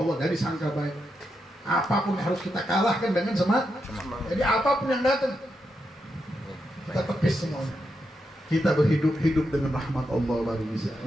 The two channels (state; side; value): normal; both; correlation 0.84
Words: jadi sangka baik. Apapun harus kita kalahkan dengan semangat. Jadi apapun yang datang kita tepis semuanya. Kita hidup dengan rahmat Allah baru bisa.